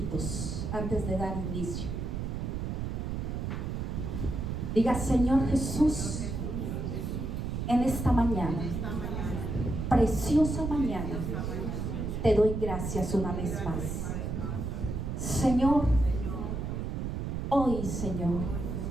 antes de dar inicio. Diga: Señor Jesús, en esta mañana, preciosa mañana, te doy gracias una vez más. Señor, hoy, Señor,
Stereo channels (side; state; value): right; noise; rumble, 3 dB below the sound